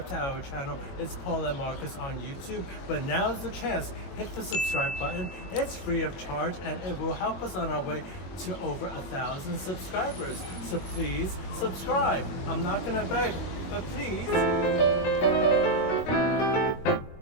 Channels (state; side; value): late; right; 21 ms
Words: to our channel. It's Paul and Marcus on YouTube, but now's the chance. Hit the subscribe button. It's free of charge and it will help us on our way to over 1,000 subscribers. So please subscribe. I'm not gonna beg, but please.